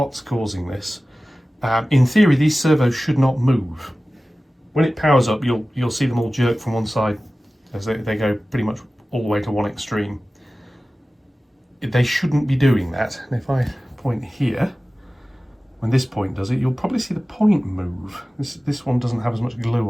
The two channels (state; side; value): normal; both; correlation 0.96